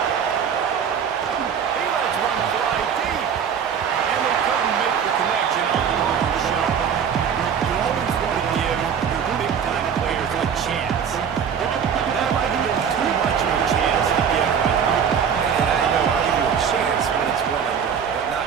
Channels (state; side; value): quieter; left; 7.5 dB